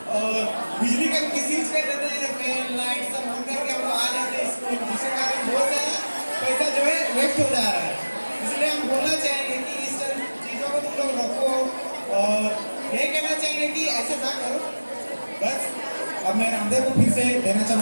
और बिजली का मिसयूज कर देते हैं, फैन लाइट सब ऑन करके हम लोग आ जाते हैं स्कूल, जिसके कारण बहुत सारा पैसा जो है वेस्ट हो जा रहा है। इसलिए हम बोलना चाहेंगे कि इस चीज़ों को तुम लोग रखो और ये कहना चाहेंगे कि ऐसा ना करो। बस अब मैं रामदेव को फिर से देना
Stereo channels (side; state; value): both; inverted; correlation -1.00